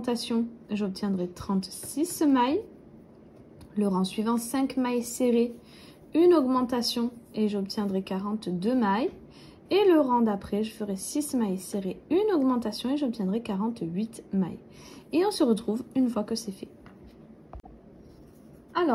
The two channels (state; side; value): identical; both; correlation 1.00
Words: J'obtiendrai 36 mailles. Le rang suivant, 5 mailles serrées, une augmentation et j'obtiendrai 42 mailles. Et le rang d'après, je ferai 6 mailles serrées, une augmentation et j'obtiendrai 48 mailles. Et on se retrouve une fois que c'est fait.